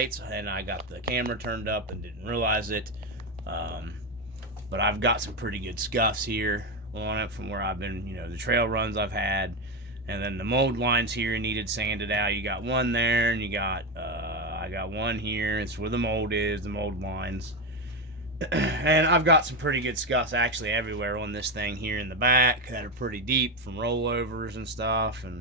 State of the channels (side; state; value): both; normal; correlation 0.12